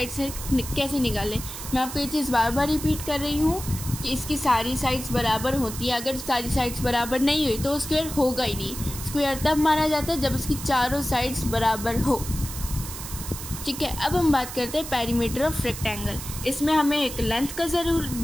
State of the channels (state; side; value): noise; right; hiss, 9 dB below the sound